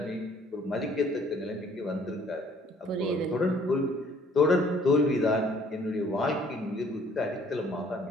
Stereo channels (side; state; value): both; normal; correlation 0.59